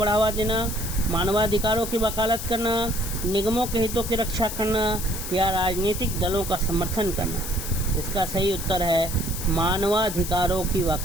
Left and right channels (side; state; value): left; noise; hiss, 7 dB below the sound